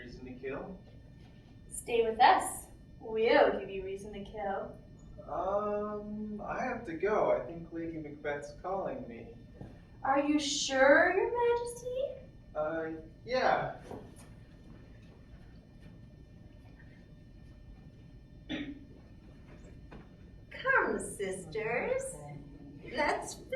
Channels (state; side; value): identical; both; correlation 1.00